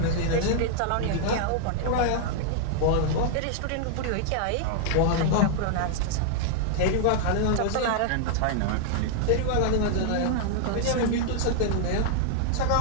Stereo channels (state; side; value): different; both; correlation -0.01